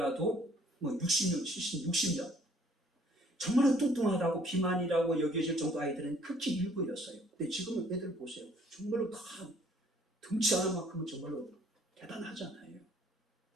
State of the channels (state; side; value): normal; both; correlation 0.60